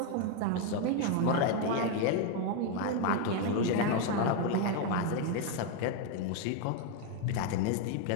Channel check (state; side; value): different; both; correlation 0.01